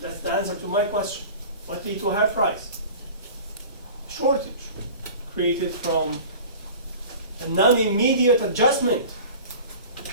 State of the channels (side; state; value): both; inverted; correlation -0.39